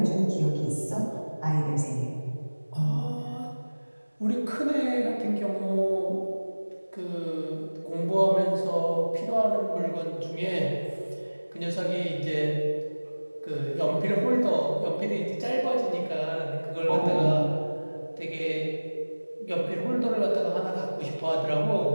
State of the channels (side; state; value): both; inverted; correlation -1.00